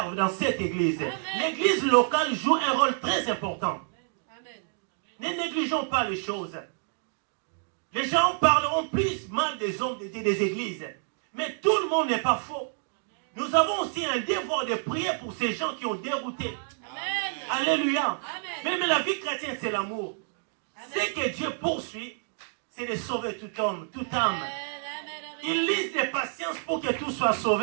dans cette église. L'église locale joue un rôle très important. Amen. Ne négligeons pas les choses. Les gens parleront plus mal des hommes de Dieu, des églises. Mais tout le monde n'est pas faux. nous avons aussi un devoir de prier pour ces gens qui ont dérouté. Amen. Alléluia. Amen. Mais la vie chrétienne, c'est l'amour. Ce que Dieu poursuit, c'est de sauver tout homme, toute âme. Il lise de patience pour que tout soit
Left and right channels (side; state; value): left; silent; 59 dB below the other